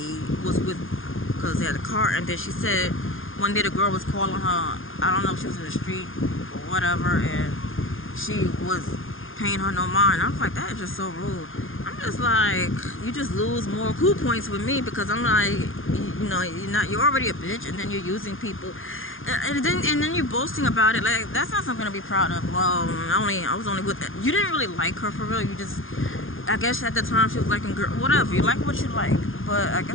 was with because they had a car. And then she said one day the girl was calling her. I don't know if she was in the street or whatever, and she was paying her no mind. I was like, that is just so rude. I'm just like, you just lose more cool points with me because I'm like, you're already a bitch, and then you're using people. And then you're boasting about it. Like, that's not something to be proud of. Well, I was only with you didn't really like her for real. You just, I guess at the time she was liking girl, whatever. You like what you like, but I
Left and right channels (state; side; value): late; right; 0.59 ms